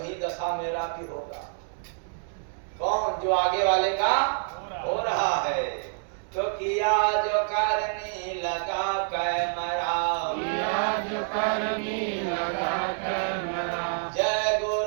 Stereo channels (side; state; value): left; silent; digital silence